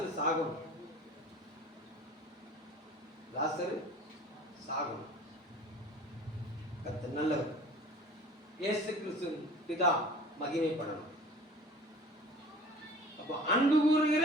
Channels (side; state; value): both; normal; correlation 0.43